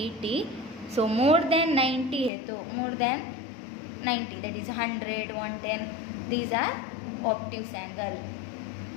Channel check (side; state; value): right; drops out; at 2.3 s